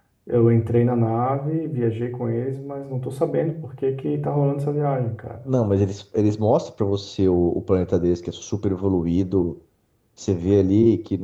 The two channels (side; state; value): both; identical; correlation 1.00